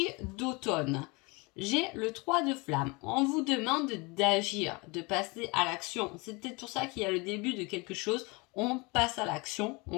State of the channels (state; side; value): quieter; right; 27.2 dB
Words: d'automne, j'ai le 3 de flamme. On vous demande d'agir, de passer à l'action. C'est peut-être pour ça qu'il y a le début de quelque chose. On passe à l'action,